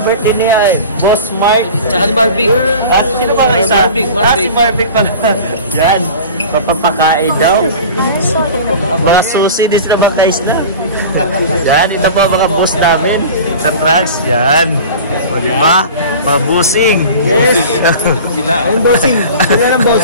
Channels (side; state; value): both; inverted; correlation -0.38